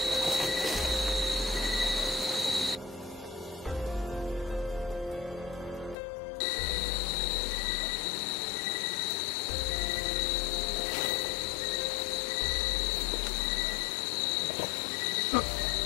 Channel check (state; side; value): drops out; right; at 6.0 s